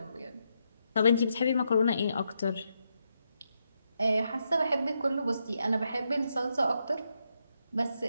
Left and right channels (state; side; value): inverted; both; correlation -0.82